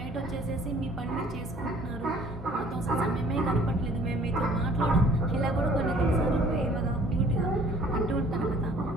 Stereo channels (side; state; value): both; normal; correlation 0.54